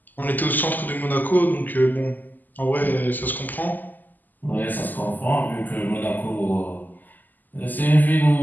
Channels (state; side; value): late; right; 0.085 ms